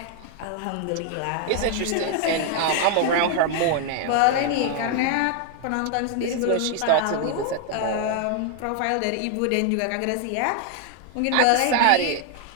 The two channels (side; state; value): both; different; correlation 0.00